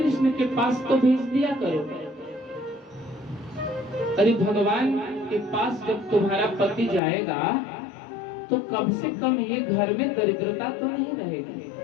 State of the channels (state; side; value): drops out; right; at 7.0 s